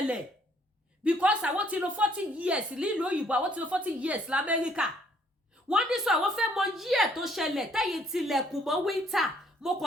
because àwọn ti lò 40 years nílùú òyìnbó àwọn ti lò 40 years lamẹ́ríkà wọ́n ní sọ àwọn fẹ́ mọ yí ẹ̀ tó ṣẹlẹ̀ tẹ́yìn tilẹ̀kùn mọ́ winter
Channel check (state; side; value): normal; both; correlation 0.65